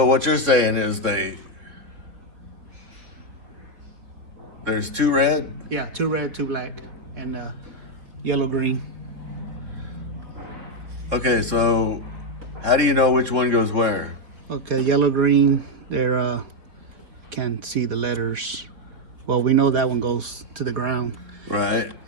what you're saying is there's 2 red? Yeah, 2 red, 2 black, and yellow, green. Okay, so how do you know which one goes where? Okay, yellow, green, they're can't see the letters. Well, we know that one goes to the ground. Right.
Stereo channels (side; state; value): left; late; 4.1 ms